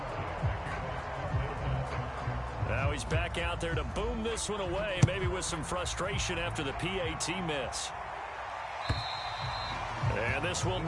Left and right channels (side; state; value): both; identical; correlation 1.00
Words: Now he's back out there to boom this one away, maybe with some frustration after the PAT miss. And this will